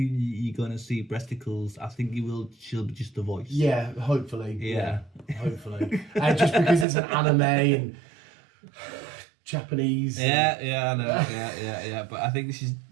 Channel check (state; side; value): drops out; left; at 6.9 s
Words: gonna see breasticles. I think she'll be just the voice. Yeah, hopefully. Yeah. Hopefully. Just because it's an anime and Japanese. Yeah, I know. Yeah. But I think